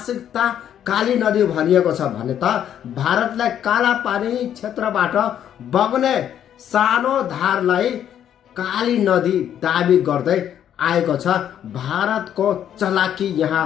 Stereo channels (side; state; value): right; quieter; 10.0 dB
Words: काली नदी भनिएको छ भने त भारतलाई काला पानी क्षेत्रबाट बग्ने सानो धारलाई काली नदी दाबी गर्दै आएको छ। भारतको चलाकी यहाँ